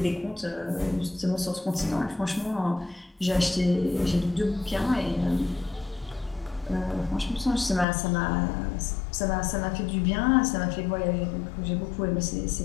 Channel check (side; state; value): right; drops out; at 7.9 s